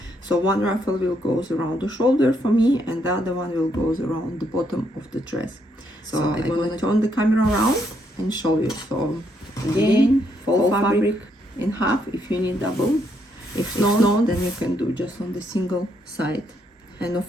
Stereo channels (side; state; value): both; normal; correlation 0.75